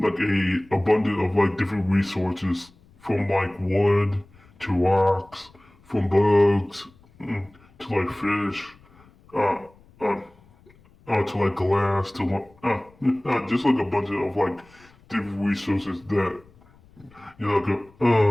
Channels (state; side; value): noise; left; rumble, 28 dB below the sound